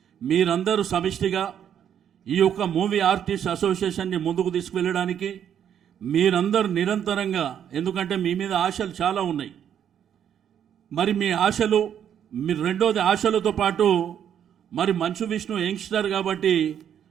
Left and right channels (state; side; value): quieter; left; 9.2 dB